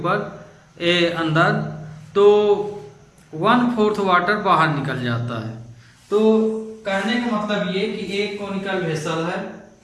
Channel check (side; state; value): both; identical; correlation 1.00